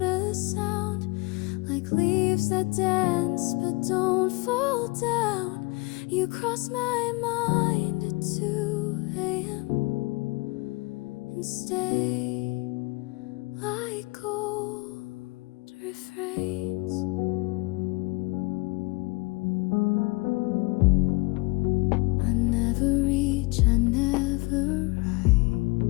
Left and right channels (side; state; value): right; quieter; 26.0 dB